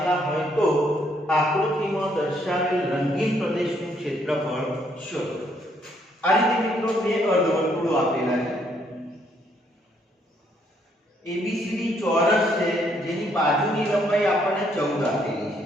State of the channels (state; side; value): normal; both; correlation 0.70